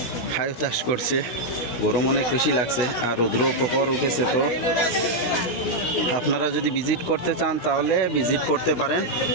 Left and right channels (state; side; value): late; right; 16 ms